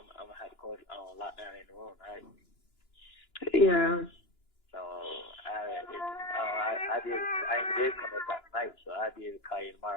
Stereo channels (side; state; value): right; late; 2.9 ms